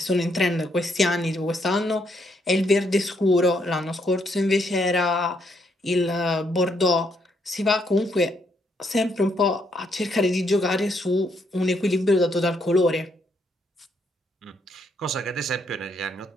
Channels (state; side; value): normal; both; correlation 0.74